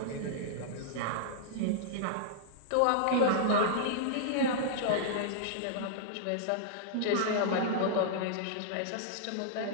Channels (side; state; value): both; different; correlation -0.02